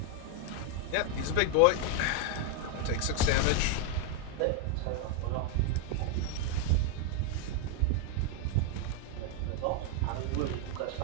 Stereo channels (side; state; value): both; different; correlation 0.01